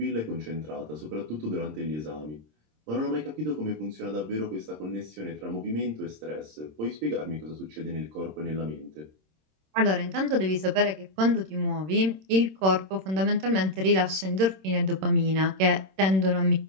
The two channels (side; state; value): left; late; 26 ms